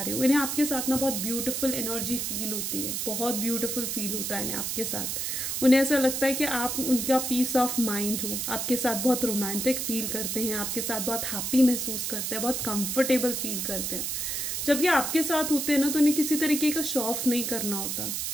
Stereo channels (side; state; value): right; noise; hiss, 2 dB below the sound